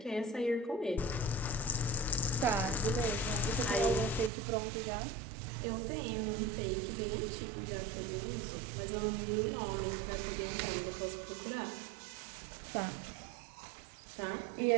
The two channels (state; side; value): drops out; left; at 4.3 s